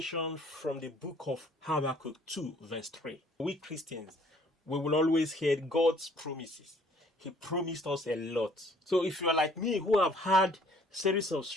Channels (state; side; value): normal; both; correlation 0.59